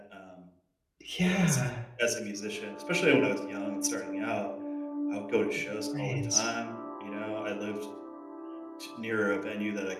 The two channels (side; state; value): both; identical; correlation 1.00